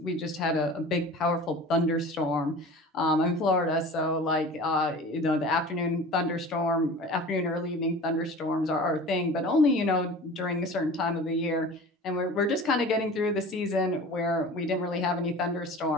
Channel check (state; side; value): normal; both; correlation 0.39